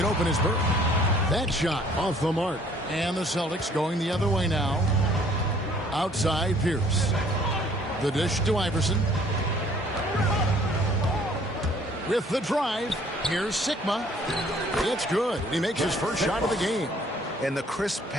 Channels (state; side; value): normal; both; correlation 0.58